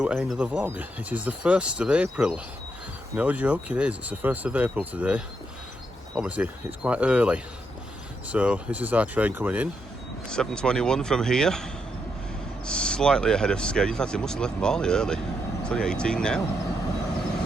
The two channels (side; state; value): both; normal; correlation 0.80